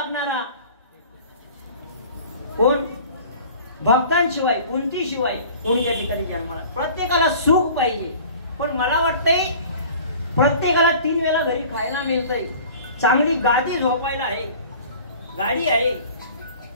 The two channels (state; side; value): inverted; both; correlation -0.45